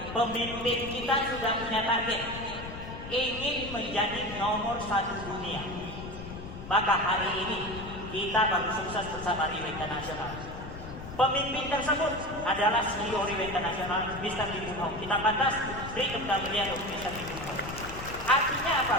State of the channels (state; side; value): noise; left; rumble, 11 dB below the sound